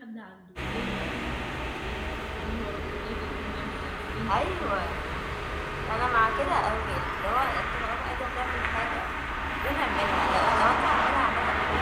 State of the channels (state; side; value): identical; both; correlation 1.00